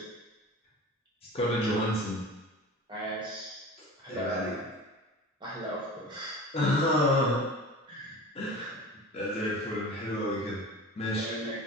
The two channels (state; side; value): normal; both; correlation 0.36